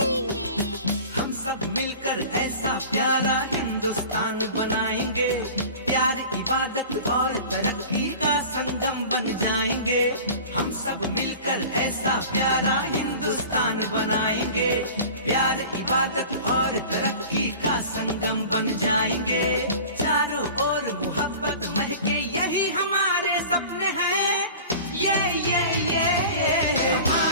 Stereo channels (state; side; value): inverted; both; correlation -0.39